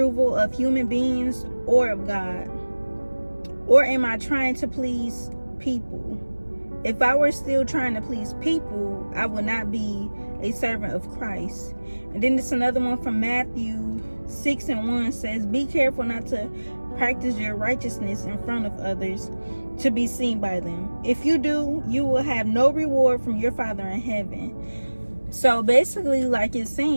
of human beings or of God? Or am I trying to please people? If I were still trying to please people, I would not be a servant of Christ." And then there's another one from Matthew 6:1 says, "Be careful not to practice your righteousness in front of others to be seen by them. If you do, you will have no reward from your Father in heaven." So basically, like, it's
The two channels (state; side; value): inverted; both; correlation -1.00